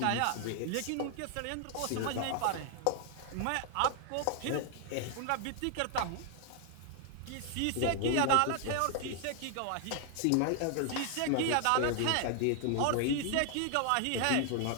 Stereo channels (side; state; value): both; different; correlation 0.00